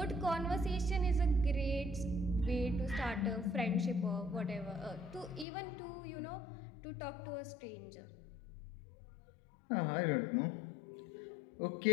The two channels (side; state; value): right; drops out; at 5.5 s